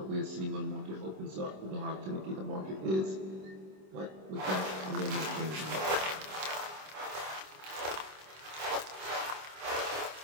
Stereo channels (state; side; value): late; left; 26 ms